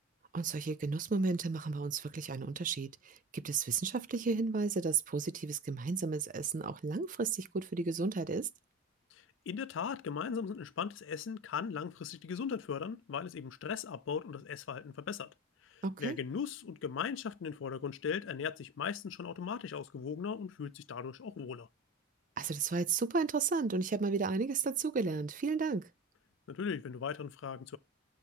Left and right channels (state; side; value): normal; both; correlation 0.33